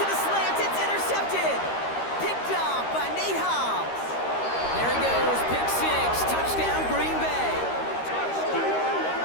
the slant. It's intercepted. Picked off by Nate Hobbs. There he goes. Pick 6. Touchdown, Green Bay.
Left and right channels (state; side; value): late; right; 13 ms